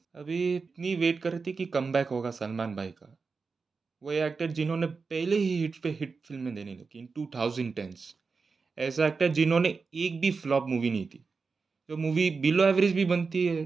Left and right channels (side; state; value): left; quieter; 4.7 dB